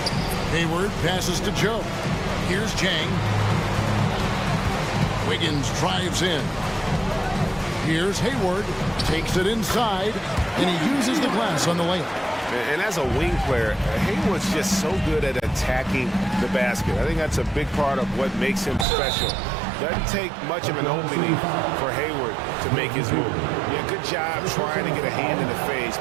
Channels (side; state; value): left; drops out; at 18.9 s